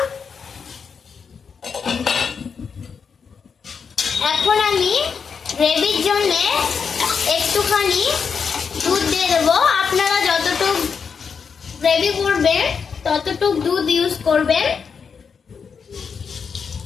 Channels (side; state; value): right; quieter; 6.1 dB